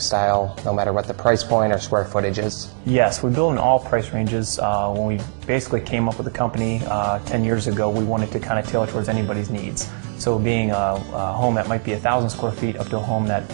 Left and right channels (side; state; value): left; silent; digital silence